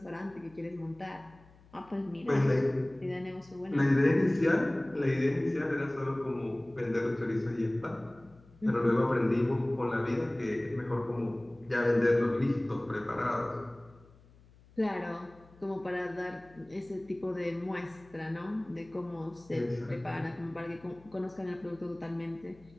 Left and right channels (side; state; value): left; noise; hum, 26 dB below the sound